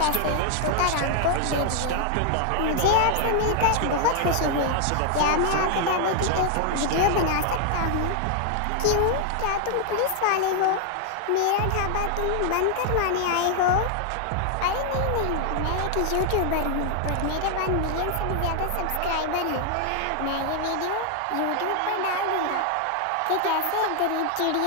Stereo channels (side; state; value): both; different; correlation 0.00